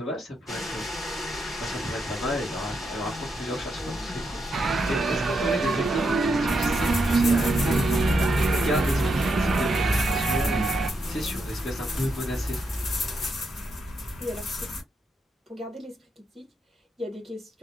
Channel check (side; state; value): both; normal; correlation 0.82